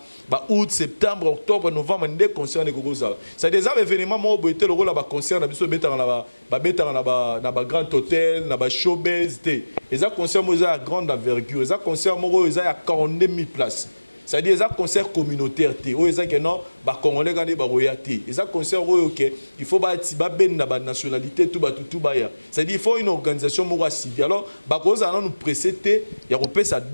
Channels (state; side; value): inverted; both; correlation -1.00